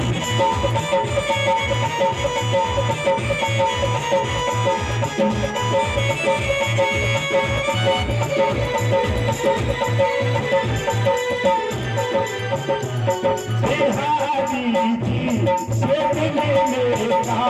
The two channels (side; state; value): both; identical; correlation 1.00